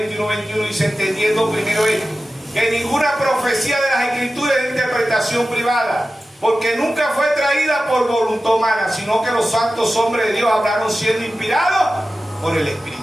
y 1:21 dice, entendiendo primero esto, que ninguna profecía de las Escrituras es de interpretación privada, porque nunca fue traída por voluntad humana, sino que los santos hombres de Dios hablaron siendo inspirados por el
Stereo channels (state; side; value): normal; both; correlation 0.94